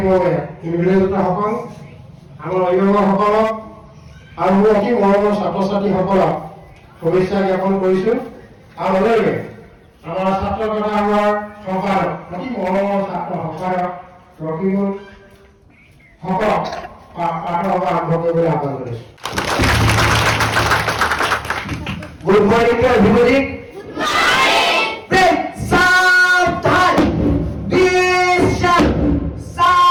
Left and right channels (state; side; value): identical; both; correlation 1.00